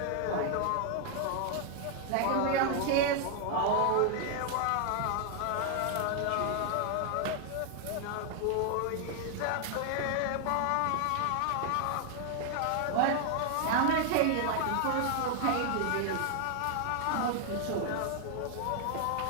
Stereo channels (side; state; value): both; different; correlation 0.00